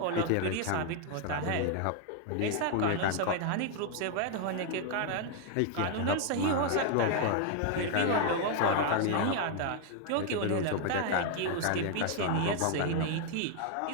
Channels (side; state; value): both; different; correlation 0.00